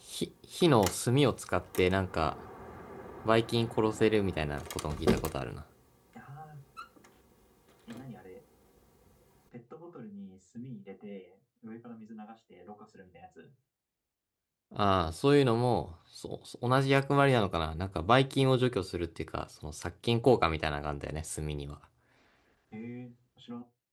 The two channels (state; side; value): identical; both; correlation 1.00